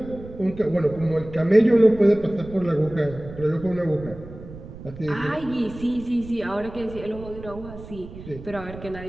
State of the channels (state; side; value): noise; right; rumble, 15 dB below the sound